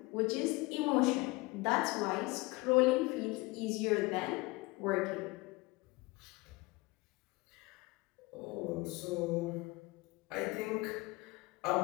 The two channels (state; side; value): quieter; right; 23.3 dB